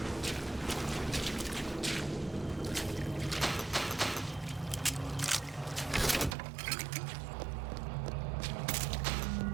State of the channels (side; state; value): left; drops out; at 6.4 s